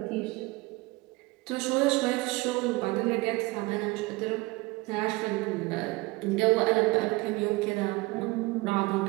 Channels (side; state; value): left; quieter; 23.0 dB